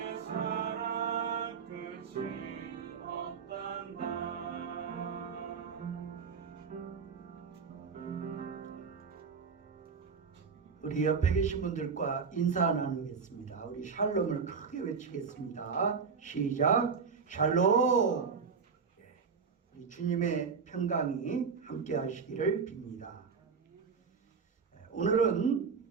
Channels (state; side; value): quieter; left; 5.7 dB